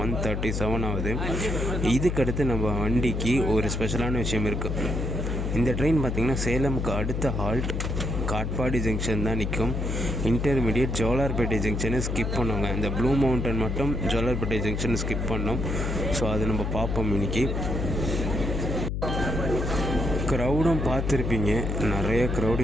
1:37 ஆகுது. இதுக்கடுத்து நம்ம வண்டிக்கு ஒரு ஸ்பெஷலான விஷயம் இருக்குது. இந்த ட்ரெயின் பார்த்திங்கன்னா சேலமுக்கு அடுத்த ஹால்ட் காட்பாடி ஜங்ஷன் தான் நிற்கும். இன்டர்மீடியட் ஜோலார்பேட்டை ஜங்ஷனை ஸ்கிப் பண்ணுவாங்க. இந்த ப்ளூ மவுண்டன் மட்டும் ஜோலார்பேட்டை ஜங்ஷனை ஸ்கிப் பண்ணோம். ஸோ அது நம்ம பார்ப்போம் இன்றைக்கி. க்ரௌடும் பார்த்துருப்பீங்க, நிறைய க்ரௌடு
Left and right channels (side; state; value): left; noise; hum, 1 dB below the sound